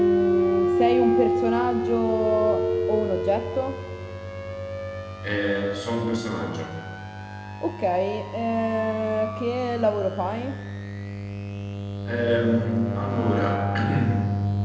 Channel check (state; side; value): identical; both; correlation 1.00